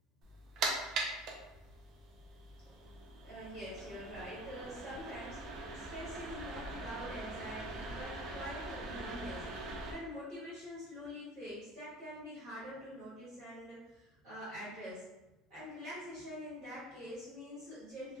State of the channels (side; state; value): both; normal; correlation 0.41